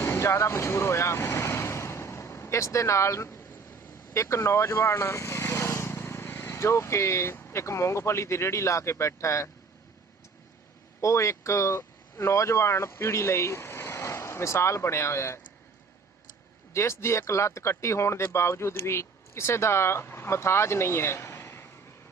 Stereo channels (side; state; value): left; quieter; 4.8 dB